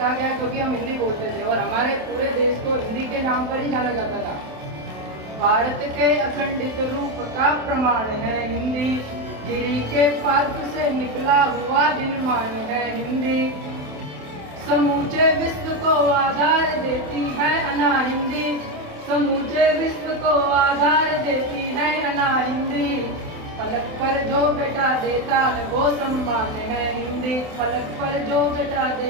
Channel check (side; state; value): left; late; 27 ms